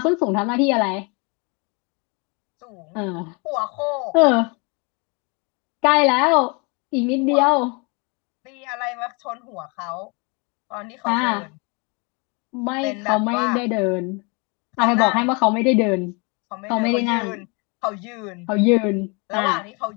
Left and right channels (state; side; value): quieter; right; 31.4 dB